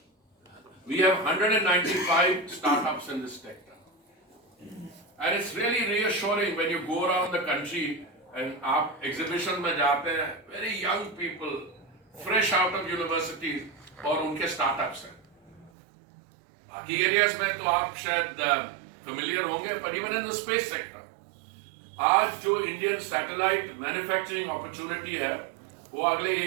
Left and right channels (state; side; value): drops out; left; at 15.7 s